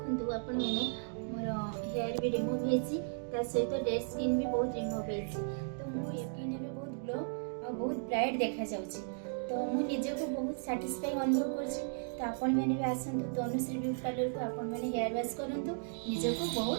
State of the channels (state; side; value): silent; left; digital silence